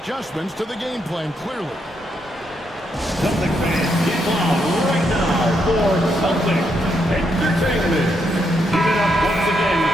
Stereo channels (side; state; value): both; normal; correlation 0.79